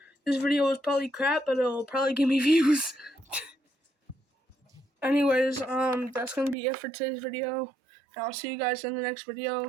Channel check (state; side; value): drops out; left; at 6.6 s